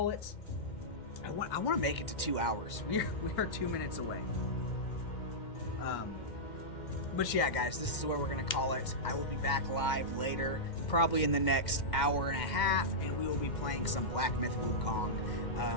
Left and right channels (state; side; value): late; right; 2.1 ms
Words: it. I want to make it to 2 hours. We are 2 minutes away. But yeah, guys, this is where we're going to call it. I will be back live later, probably in the next hour and a half, and we will be playing some Black Myth Wukong.